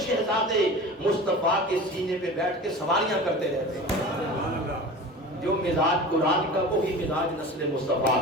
شہزادے مصطفیٰ کے سینے پہ بیٹھ کے سواریاں کرتے رہتے ہیں. جو مزاج قرآن کا وہی مزاج نسل مصطفیٰ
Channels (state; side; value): normal; both; correlation 0.35